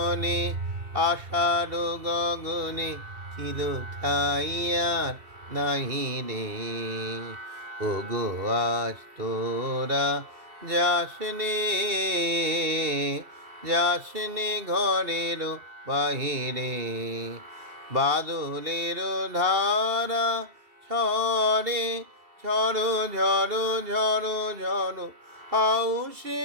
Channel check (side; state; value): left; late; 2.7 ms